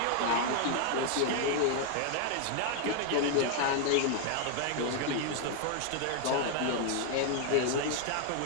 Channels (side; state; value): both; different; correlation 0.00